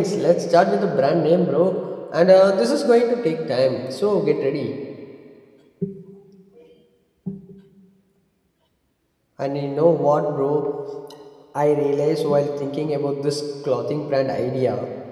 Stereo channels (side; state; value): both; identical; correlation 1.00